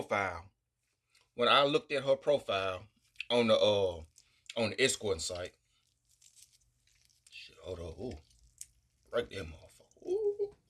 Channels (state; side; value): identical; both; correlation 1.00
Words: on the escort site, shit, hold on, ooh, right there, motherfucker, ooh,